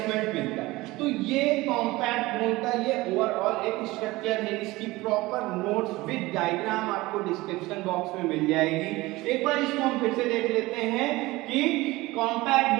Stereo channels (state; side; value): quieter; left; 20.1 dB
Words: मिलता है। तो ये कॉम्पैक्ट बोन का ये ओवरऑल एक स्ट्रक्चर है। इसकी प्रॉपर नोट्स विद डायग्राम आपको डिस्क्रिप्शन बॉक्स में मिल जाएगी। एक बार इसको हम फिर से देख लेते हैं कि कॉम्पैक्ट